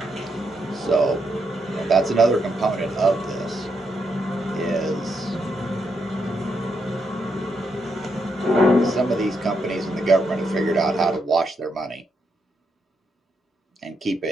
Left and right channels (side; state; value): both; normal; correlation 0.80